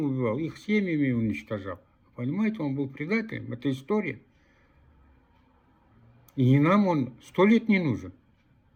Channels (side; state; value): both; identical; correlation 1.00